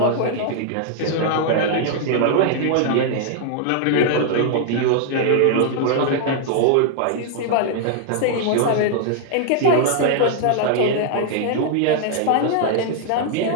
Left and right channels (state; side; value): different; both; correlation 0.00